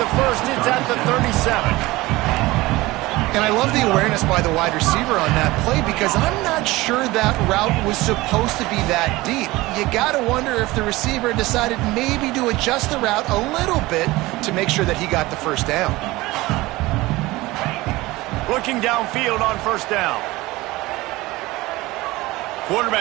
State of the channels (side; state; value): left; quieter; 19.9 dB